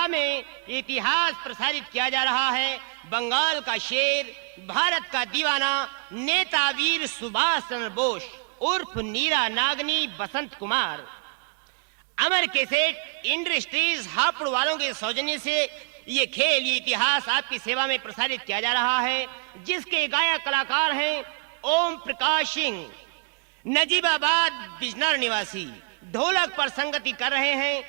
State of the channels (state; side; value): quieter; left; 37.0 dB